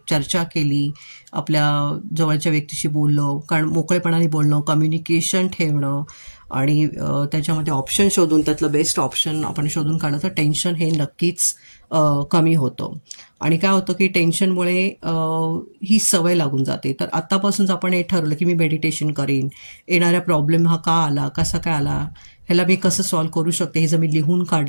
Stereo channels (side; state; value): both; inverted; correlation -1.00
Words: चर्चा केली, आपल्या जवळच्या व्यक्तीशी बोललं, कारण मोकळेपणाने बोलणं, कम्युनिकेशन ठेवणं आणि त्याच्यामध्ये ऑप्शन शोधून त्यातलं बेस्ट ऑप्शन आपण शोधून काढलं तर टेन्शन हे नक्कीच कमी होतं. आणि काय होतं की टेन्शनमुळे ही सवय लागून जाते. तर आत्तापासूनच आपण हे ठरवलं की मी मेडिटेशन करीन. येणाऱ्या प्रॉब्लेम हा का आला, कसा काय आला, ह्याला मी कसं सॉल्व्ह करू शकते हे जर मी लिहून